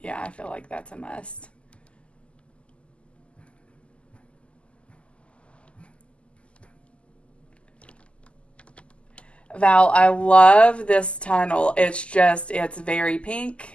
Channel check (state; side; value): late; right; 0.055 ms